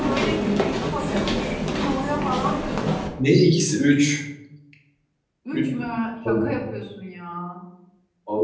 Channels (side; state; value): both; identical; correlation 1.00